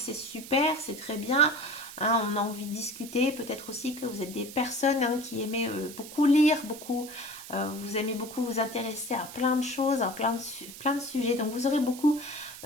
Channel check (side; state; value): right; noise; hiss, 14 dB below the sound